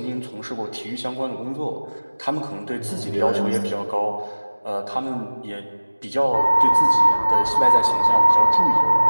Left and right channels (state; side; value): inverted; both; correlation -1.00